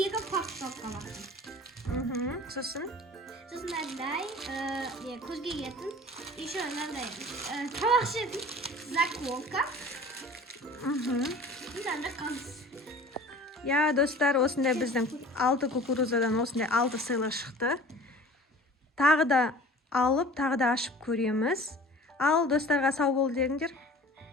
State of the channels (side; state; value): both; normal; correlation 0.43